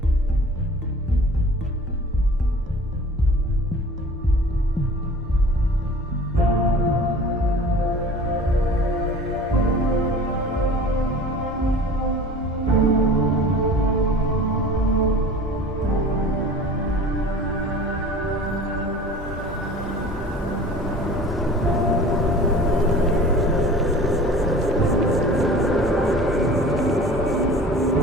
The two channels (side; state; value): both; normal; correlation 0.42